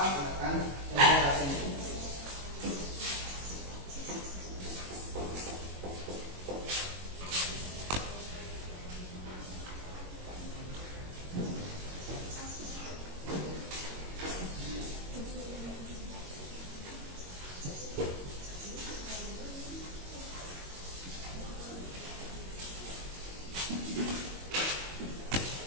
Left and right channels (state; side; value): late; left; 22 ms